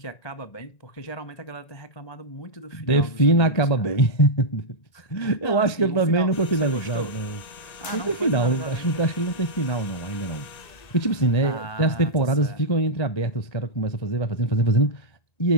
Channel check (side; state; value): right; late; 1.9 ms